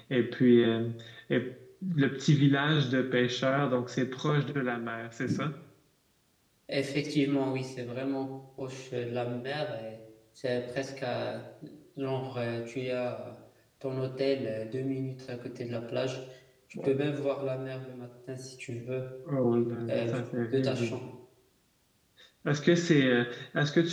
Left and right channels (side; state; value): both; identical; correlation 1.00